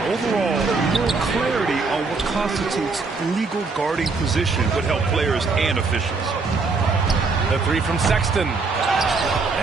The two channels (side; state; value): left; quieter; 4.2 dB